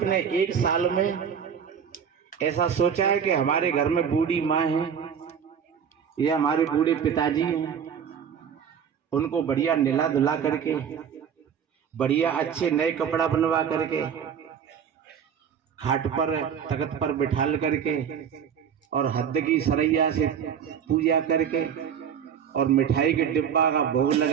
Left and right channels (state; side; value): quieter; left; 7.8 dB